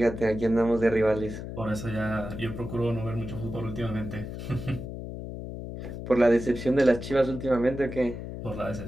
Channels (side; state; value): left; noise; hum, 8 dB below the sound